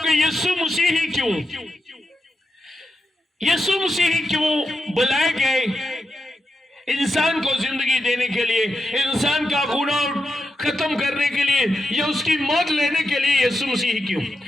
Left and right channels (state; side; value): normal; both; correlation 0.87